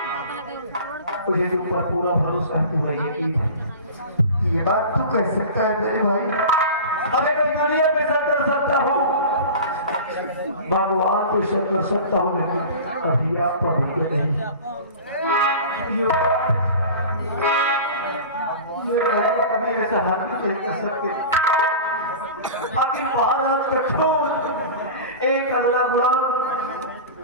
मुझे तुम पर पूरा भरोसा है, पूरा यकीन है। ये बात तू कह सकता है मेरे भाई, अरे मैं दुनिया में सब कर सकता हूँ, भगवान को सब कर सकता हूँ, लेकिन कभी आप पर नहीं। कभी ऐसा हाथ नहीं कर सकते। आखिर महाराज का खून एक अल्लाह गुलाम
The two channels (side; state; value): both; inverted; correlation -0.35